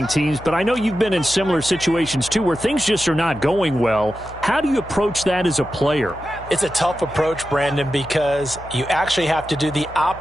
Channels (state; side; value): noise; left; hum, 16 dB below the sound